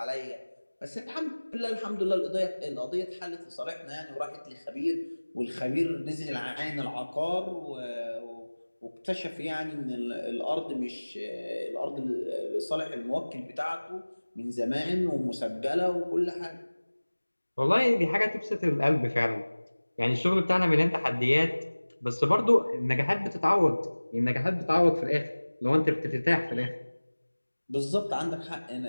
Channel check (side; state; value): both; inverted; correlation -1.00